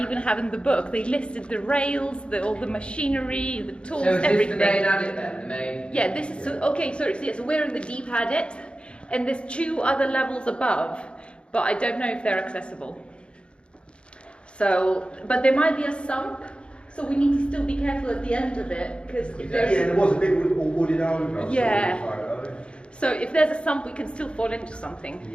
have in the book, they listed the rails, all the machinery, the tools, So is everything. this the main adit then? The main? Yeah, this is, so, okay, so we're in the deep adit, and there's 2 other levels above, but I don't know if they're accessible. So, but there might be a sump. So we need to still be careful at the end of it, because if there's... Yeah, there was a bit all wooded over. Yeah. So if there's a sump, we can still fall into something,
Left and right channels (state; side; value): late; right; 0.056 ms